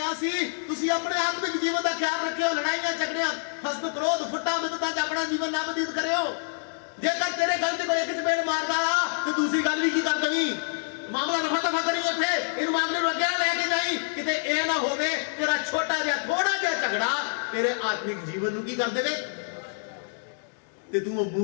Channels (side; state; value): right; silent; 60 dB below the other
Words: ਸੀ ਤੁਸੀਂ ਆਪਣੇ ਆਤਮਿਕ ਜੀਵਨ ਦਾ ਖਿਆਲ ਰੱਖਿਓ, ਲੜਾਈਆਂ ਝਗੜਿਆਂ, ਹਸਦ ਕ੍ਰੋਧ ਫੁੱਟਾਂ ਮਿੱਤਤਾ 'ਚ ਆਪਣਾ ਜੀਵਨ ਨਾ ਬਤੀਤ ਕਰਿਓ। ਜੇਕਰ ਤੇਰੇ ਗੱਲ 'ਚ ਕੋਈ ਇੱਕ ਚਪੇੜ ਮਾਰਦਾ ਆ ਤੇ ਦੂਸਰੀ ਗੱਲ ਵੀ ਕੀ ਕਰ ਦੇਵੀਂ, ਮਾਮਲਾ ਰਫਾ ਦਫਾ ਕਰੀ ਉੱਥੇ, ਇਹਨੂੰ ਮਾਮਲੇ ਨੂੰ ਅੱਗੇ ਲੈ ਕੇ ਜਾਈ, ਕਿਤੇ ਇਹ ਨਾ ਹੋਵੇ ਤੇਰਾ ਛੋਟਾ ਜਿਹਾ ਥੋੜਾ ਜਿਹਾ ਝਗੜਾ ਤੇਰੇ ਆਤਮਿਕ ਜੀਵਨ ਨੂੰ ਕੀ ਕਰ ਦੇਵੇ ਤੇ ਤੂੰ ਉਹ